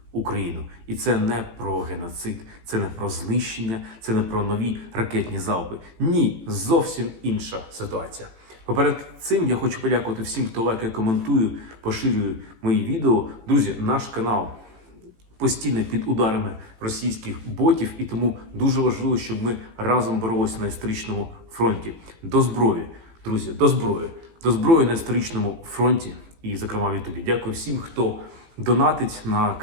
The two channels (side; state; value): left; late; 18 ms